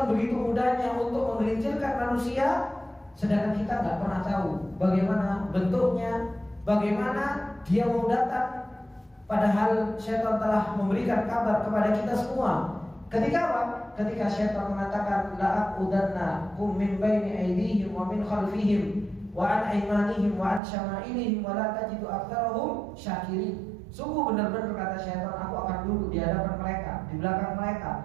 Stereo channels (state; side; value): drops out; left; at 20.6 s